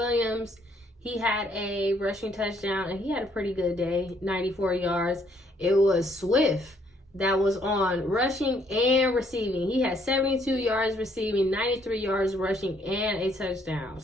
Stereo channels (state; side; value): normal; both; correlation 0.67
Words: he had a rushing touchdown, and he had a pretty good day, 94 yards. It was Swift that was on rushing and receiving. He had 72 yards receiving, 93 yards rushing, and a touchdown.